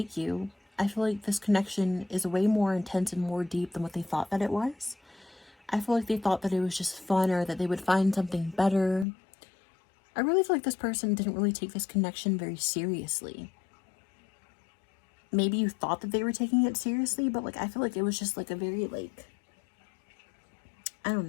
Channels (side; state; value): right; drops out; at 9.1 s